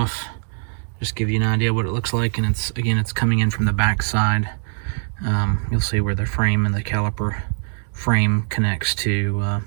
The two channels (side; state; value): left; silent; digital silence